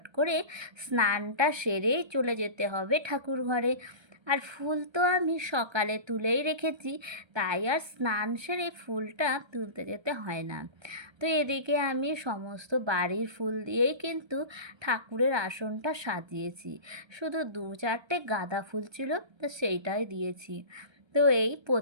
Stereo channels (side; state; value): left; late; 1.3 ms